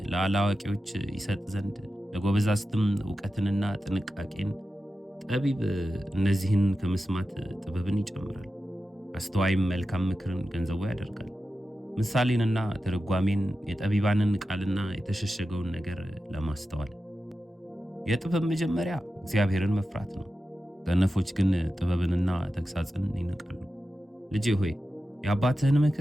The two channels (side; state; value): both; normal; correlation 0.92